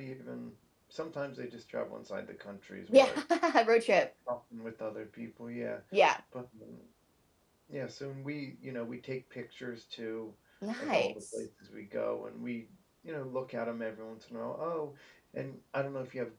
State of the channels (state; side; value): identical; both; correlation 1.00